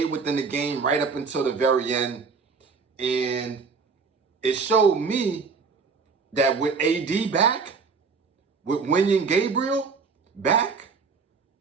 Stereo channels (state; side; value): quieter; left; 5.0 dB